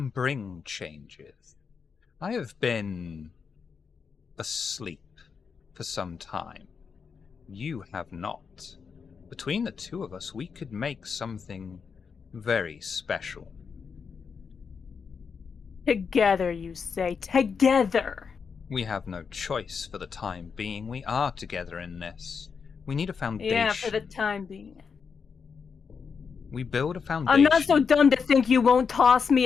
bring changes. I have been asleep for some time. You have not. Between the two of us, we could make something very special. Together, you say. Together! We have no choice for the time being. We are together in this. We need a foundation. Yeah, for the time being. We build a foundation. I'm not so dumb to think you won't toss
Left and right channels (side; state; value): right; quieter; 5.9 dB